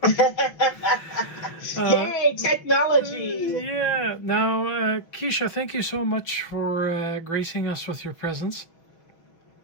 uh, Yay, technology! yeah. Now, Quisha, thank you so much for gracing us with your presence.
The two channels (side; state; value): right; late; 6.0 ms